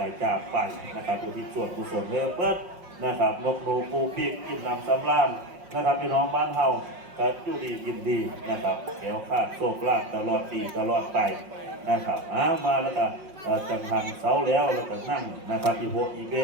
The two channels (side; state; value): left; late; 5.5 ms